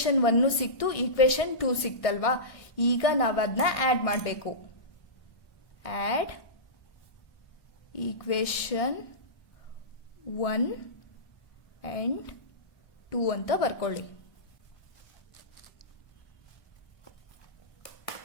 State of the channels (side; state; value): right; late; 1.6 ms